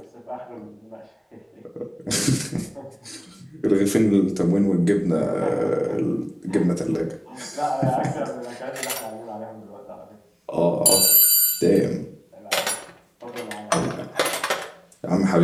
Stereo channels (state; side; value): identical; both; correlation 1.00